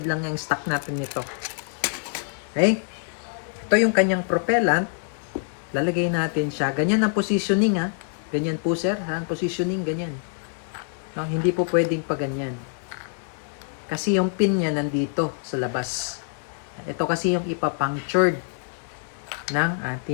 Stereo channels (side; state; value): right; silent; digital silence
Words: lang yung stock natin nito. Okay? Ito yung kanyang propellant. Lalagay natin siya. Ganyan ang positioning, ha. Ganyan po, sir. Ha? Positioning, ganyan. No, hindi po pwedeng pa ganyan. Kasi yung pin niya nandito sa labas. Ito kasi yung ipapunctured ng